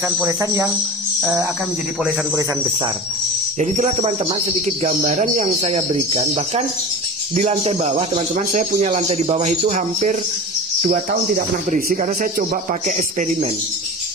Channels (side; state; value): both; normal; correlation 0.32